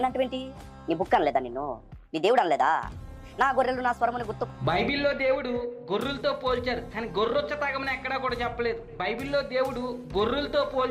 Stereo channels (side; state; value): both; identical; correlation 1.00